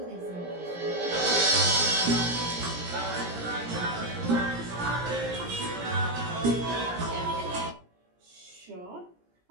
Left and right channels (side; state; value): left; late; 17 ms